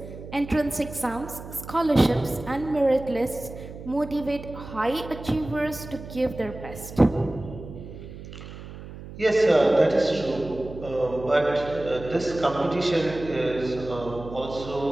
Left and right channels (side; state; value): right; noise; hum, 13 dB below the sound